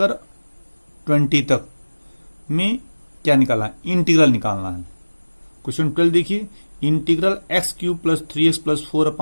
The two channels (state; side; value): inverted; both; correlation -1.00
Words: 20 तक में क्या निकालना है, इंटीग्रल निकालना है। क्वेश्चन 12 देखिए, integral x cube plus 3x plus 4